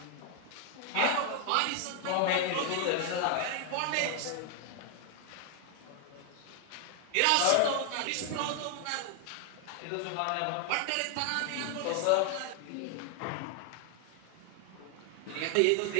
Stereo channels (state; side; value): different; both; correlation 0.00